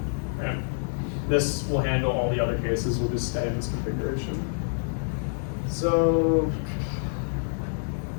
right? This will handle all the other cases, we'll just stay in this configuration. So,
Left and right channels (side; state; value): right; silent; digital silence